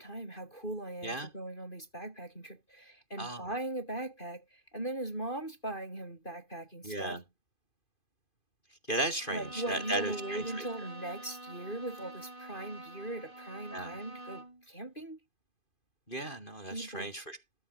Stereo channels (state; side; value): late; right; 2.5 ms